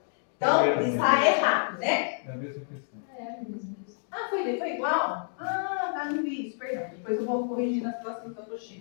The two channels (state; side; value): silent; right; digital silence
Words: Então, está errado, né? É a mesma questão. Ah, foi igual? Ah, tá, não vi isso, perdão. Depois eu vou corrigir nas próximas